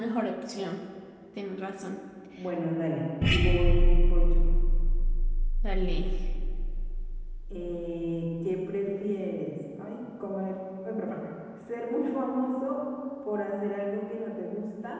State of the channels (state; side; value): identical; both; correlation 1.00